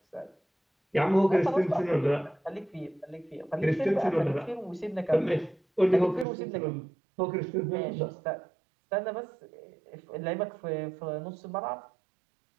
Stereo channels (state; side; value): drops out; left; at 6.2 s